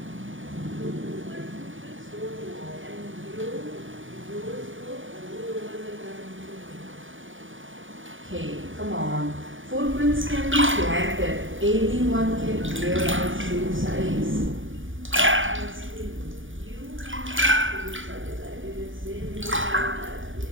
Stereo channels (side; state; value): left; late; 0.57 ms